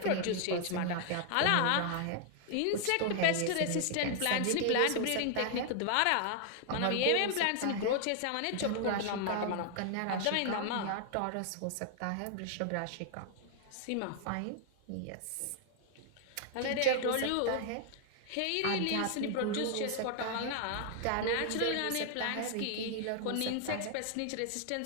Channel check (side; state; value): both; different; correlation 0.00